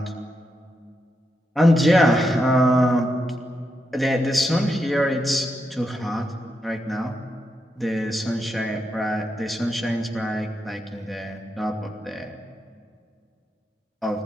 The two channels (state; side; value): normal; both; correlation 0.84